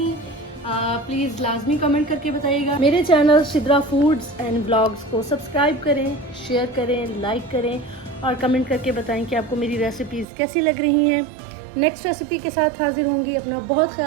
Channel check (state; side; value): drops out; left; at 10.2 s